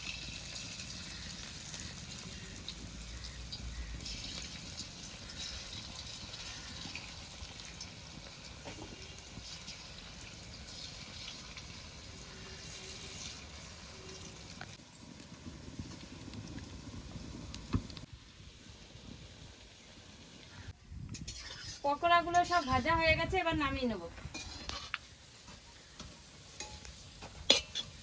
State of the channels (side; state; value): both; identical; correlation 1.00